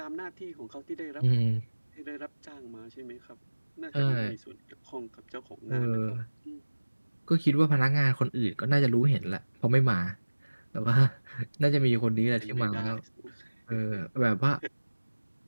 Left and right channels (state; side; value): inverted; both; correlation -1.00